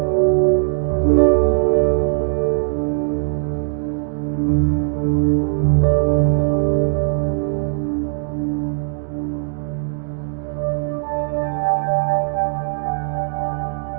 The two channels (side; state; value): left; silent; digital silence